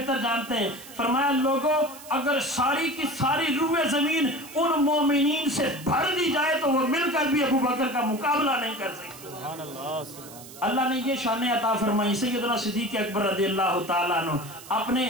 جانتے ہیں. فرمایا لوگوں اگر ساری کی ساری روح زمین ان مومنین سے بھر دی جائے تو وہ مل کر بھی ابو بکر کا مقابلہ نہیں کر سکتے. سبحان اللہ سبحان اللہ. اللہ نے یہ شان عطا فرمائی. سیدنا صدیق اکبر رضی اللہ تعالیٰ عنہ اپنے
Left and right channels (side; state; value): right; noise; hiss, 17 dB below the sound